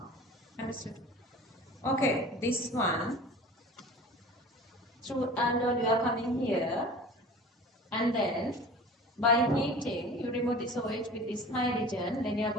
Understood? Okay, this one. Through aldol you are coming here, and then by heating you remove this OH with this hydrogen. Then you are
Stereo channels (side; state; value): both; normal; correlation 0.40